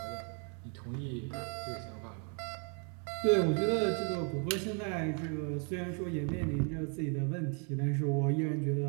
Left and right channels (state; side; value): quieter; left; 39.5 dB